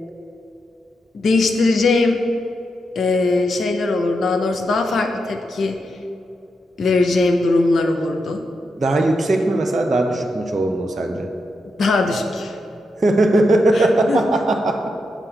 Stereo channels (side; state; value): both; normal; correlation 0.85